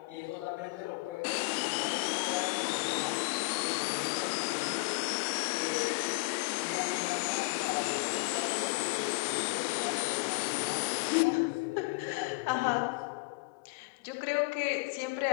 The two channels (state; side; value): quieter; right; 28.5 dB